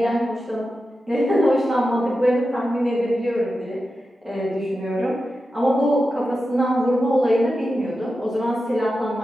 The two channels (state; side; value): normal; both; correlation 0.91